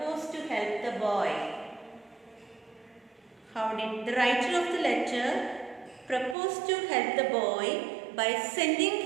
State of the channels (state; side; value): drops out; left; at 6.4 s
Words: to help the boy? How did the writer of the letter propose to help the boy by